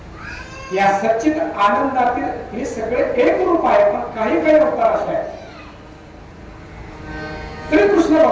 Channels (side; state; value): both; identical; correlation 1.00